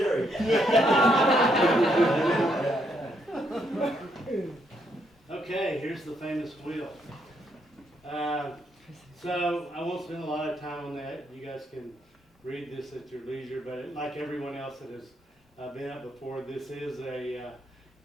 Okay, here's the famous wheel. So I won't spend a lot of time on that. You guys can read this at your leisure, but like everyone else that has been up before, this is a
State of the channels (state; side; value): normal; both; correlation 0.75